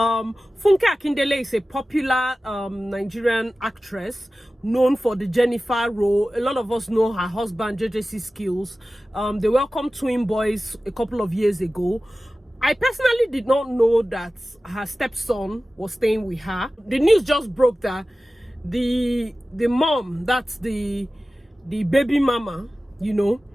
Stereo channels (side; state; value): both; normal; correlation 0.96